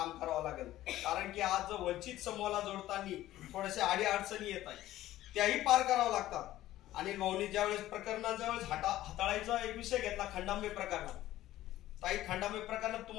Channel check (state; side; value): quieter; right; 14.7 dB